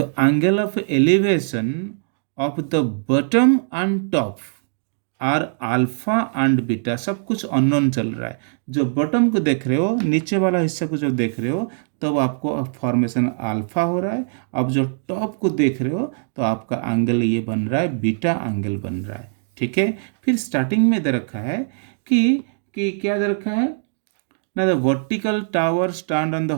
angle of elevation of the bottom and top are alpha and beta. सब कुछ अननोन चल रहा है. जो बॉटम को देख रहे हो, नीचे वाला हिस्सा को जो देख रहे हो, तब आपको फॉर्मेशन अल्फा हो रहा है. अब जो टॉप को देख रहे हो तो आपका एंगल ये बन रहा है, बीटा एंगल बन रहा है. ठीक है, फिर स्टार्टिंग में दे रखा है कि क्या दे रखा है ना, the vertical tower stand on the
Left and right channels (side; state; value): left; silent; digital silence